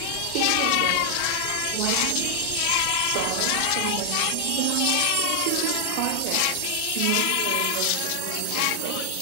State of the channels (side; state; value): both; different; correlation 0.00